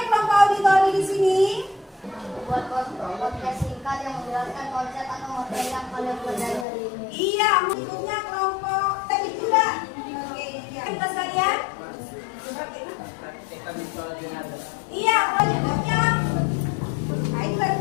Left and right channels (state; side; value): drops out; right; at 6.7 s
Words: kelompok auditori di sini? Buat podcast singkat yang menjelaskan konsep atau materi yang kalian pelajari hari ini. Iya, bukunya kelompok teknik juga. Oke, ya. Kita sekalian. Iya, kelompoknya. Nah, ini dari